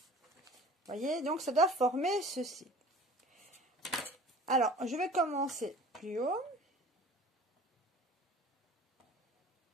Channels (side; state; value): both; normal; correlation 0.45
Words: Voyez, donc ça doit former ceci. Alors, je vais commencer plus haut.